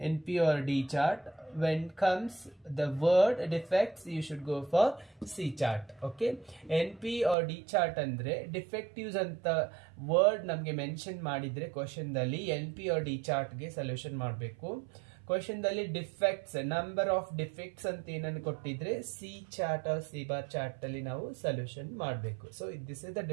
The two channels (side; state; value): left; drops out; at 7.4 s